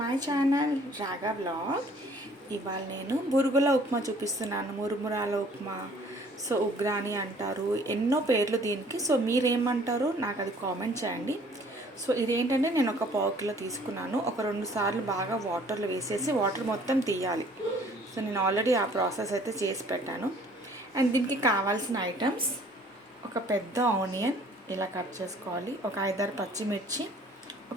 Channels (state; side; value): normal; both; correlation 0.56